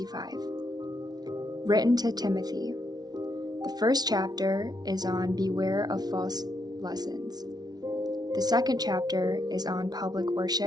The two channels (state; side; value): late; left; 0.19 ms